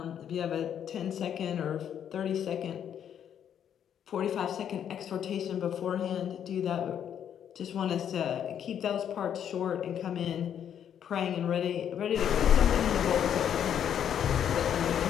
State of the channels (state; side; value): quieter; right; 9.2 dB